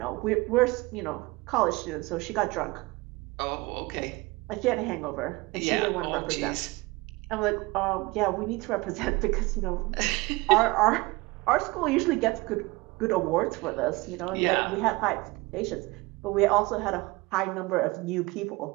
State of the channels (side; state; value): left; quieter; 23.1 dB